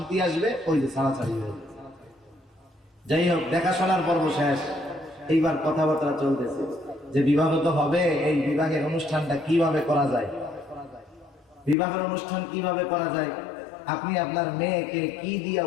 আসবে, ওই যে ছাড়াছাড়ি হবে। যাই হোক, দেখাশোনার পর্ব শেষ, এইবার কথাবার্তা চলতেছে যে বিবাহ তো হবে, এই বিবাহের অনুষ্ঠানটা কিভাবে করা যায়, বিবাহের অনুষ্ঠান কিভাবে করা যায়। আপনি আপনার মেয়েকে কি দিয়া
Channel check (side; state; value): right; drops out; at 11.8 s